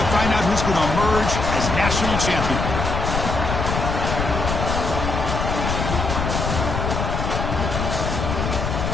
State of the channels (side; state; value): left; noise; rumble, 2 dB below the sound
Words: find out who's going to emerge as national champion.